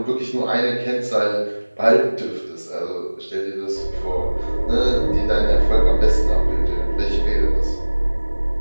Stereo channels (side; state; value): both; inverted; correlation -1.00